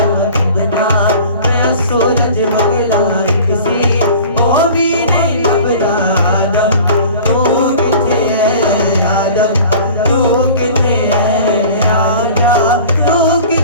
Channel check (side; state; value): both; inverted; correlation -0.43